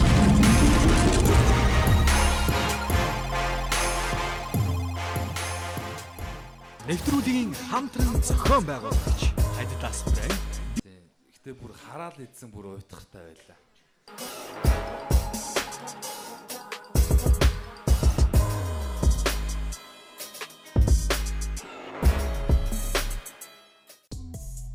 Нэвтрүүлгийн хамтран зохион байгуулагч Adidas брэнд. Гэтэ бүр хараал идсэн бүр уйтгартай байлаа.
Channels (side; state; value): both; identical; correlation 1.00